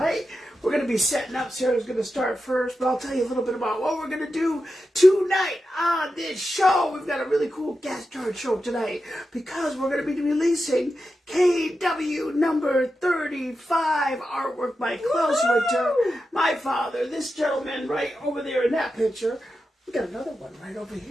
We're going to be setting up. Sarah's going to start first, but I'll tell you a little bit about what we're going to do tonight on this show. We've got a really cool guest star show tonight because we're going to be releasing KW number 35 artwork by Klaus Winter, my father, this gentleman right over there in that picture. We got another one right over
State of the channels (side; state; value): both; normal; correlation 0.90